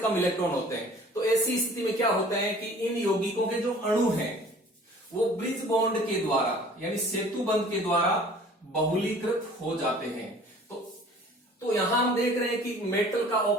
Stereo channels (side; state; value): both; normal; correlation 0.49